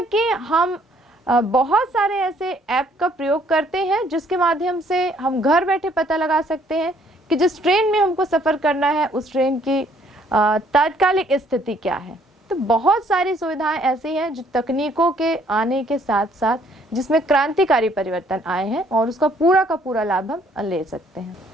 कि हम बहुत सारे ऐसे ऐप का प्रयोग करते हैं जिसके माध्यम से हम घर बैठे पता लगा सकते हैं कि जिस ट्रेन में हमको सफ़र करना है उस ट्रेन की तात्कालिक स्थिति क्या है। तो बहुत सारी सुविधाएं ऐसी हैं जो तकनीकों के आने के साथ साथ जिसमें क्रांतिकारी परिवर्तन आए हैं और उसका पूरा का पूरा लाभ हम ले सकते हैं।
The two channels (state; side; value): normal; both; correlation 0.63